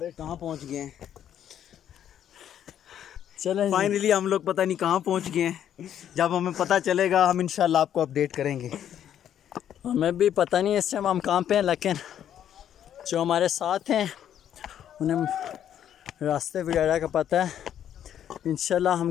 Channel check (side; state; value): right; quieter; 10.1 dB